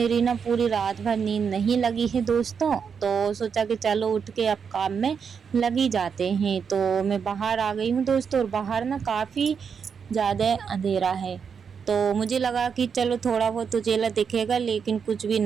ना पूरी रात भर नींद नहीं लगी है दोस्तों। तो सोचा कि चलो उठ के अब काम में लगी जाते हैं। तो मैं बाहर आ गई हूँ दोस्तों और बाहर ना काफ़ी ज़्यादा अंधेरा है। तो मुझे लगा कि चलो थोड़ा बहुत उजाला दिखेगा, लेकिन कुछ भी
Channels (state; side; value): quieter; left; 6.5 dB